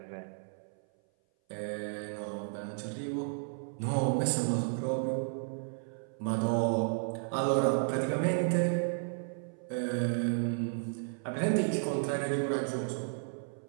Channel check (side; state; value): left; silent; 56 dB below the other